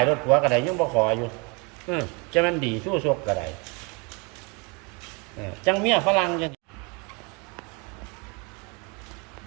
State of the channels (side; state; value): left; quieter; 30.9 dB